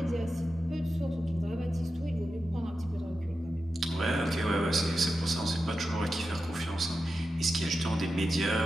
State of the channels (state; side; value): normal; both; correlation 0.91